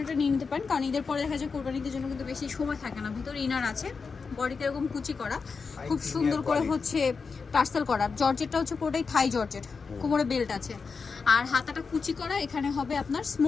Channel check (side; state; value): right; quieter; 5.0 dB